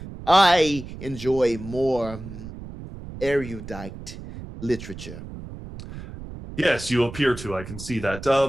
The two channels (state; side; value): noise; right; rumble, 12 dB below the sound